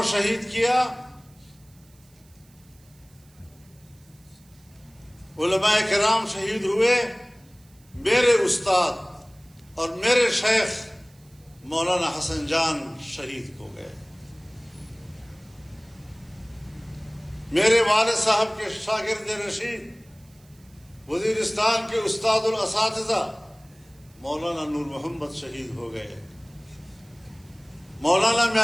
شہید کیا. علماء کرام شہید ہوئے. میرے استاد اور میرے شیخ مولانا حسن جان شہید ہو گئے. میرے والد صاحب کے شاگرد رشید وزیرستان کے استاد الاساتذہ مولانا نور محمد شہید ہو گئے. مولانا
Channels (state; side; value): noise; right; hiss, 30 dB below the sound